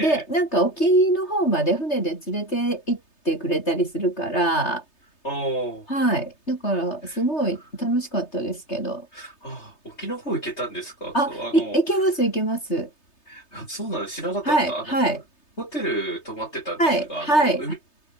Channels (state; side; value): late; right; 3.3 ms